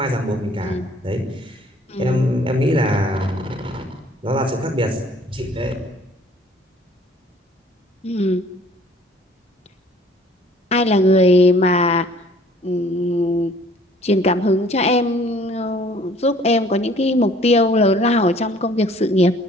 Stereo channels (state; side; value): normal; both; correlation 0.55